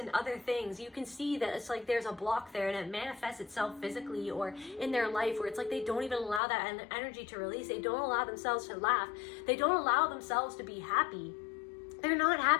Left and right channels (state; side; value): drops out; right; at 6.4 s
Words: other things. You can see that it's like there's a block there, and it manifests itself physically or in their life, where it's like they don't even allow that energy to release. They don't allow themselves to laugh. They don't allow themselves to be happy. They're not